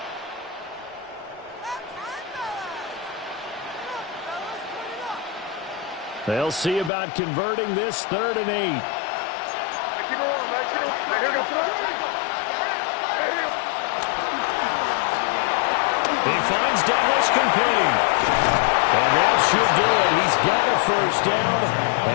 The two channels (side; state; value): right; drops out; at 6.9 s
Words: They'll see about converting this 3rd and 8. He finds Douglas complete. And that should do it. He's got a first down,